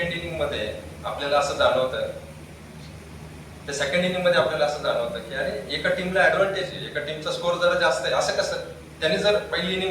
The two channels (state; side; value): identical; both; correlation 1.00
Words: इनिंग मध्ये आपल्याला असं जाणवतं, तर सेकंड इनिंग मध्ये आपल्याला असं जाणवतं की अरे एका टीमला ऍडव्हान्टेज आहे, एका टीमचा स्कोर जरा जास्त आहे. असं कसं? त्याने जर पहिली